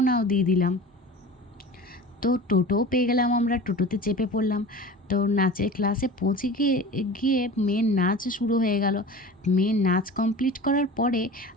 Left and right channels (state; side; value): normal; both; correlation 0.37